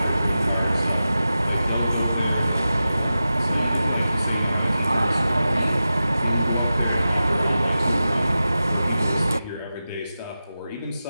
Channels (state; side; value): inverted; both; correlation -0.93